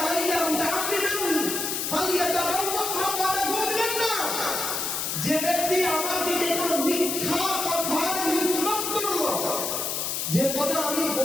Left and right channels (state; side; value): noise; left; hiss, 1 dB below the sound